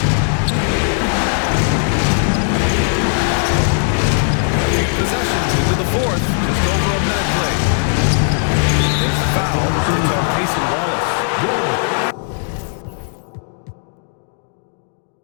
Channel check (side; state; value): right; silent; digital silence